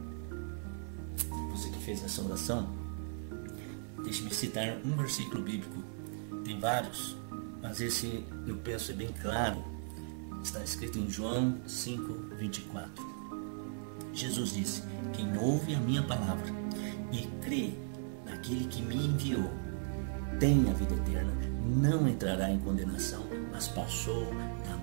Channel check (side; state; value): left; silent; 53 dB below the other